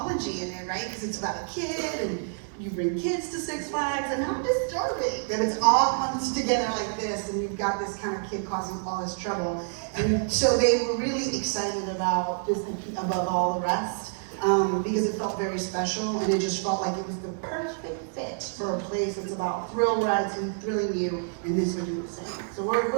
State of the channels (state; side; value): silent; left; digital silence